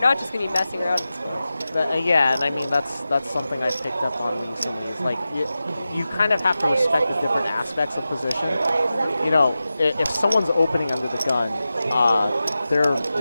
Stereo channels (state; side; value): inverted; both; correlation -0.94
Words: not just going to be messing around. Yeah, and I mean that's something I've picked up on recently. Is like you kind of have to respect the different aspects of position. You know, if someone's opening under the gun, they're